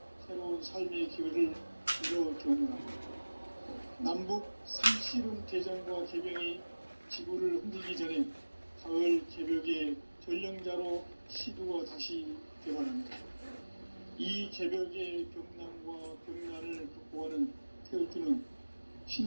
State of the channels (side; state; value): both; inverted; correlation -1.00